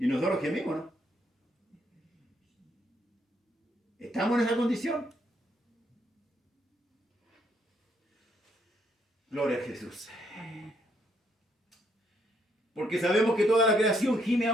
nosotros gemimos, ¿no? ¿Estamos en esa condición? Gloria a Jesús. Porque sabemos que toda la creación gime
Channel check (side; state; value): both; normal; correlation 0.73